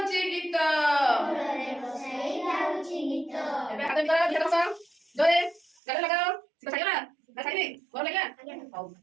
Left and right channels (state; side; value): drops out; left; at 5.7 s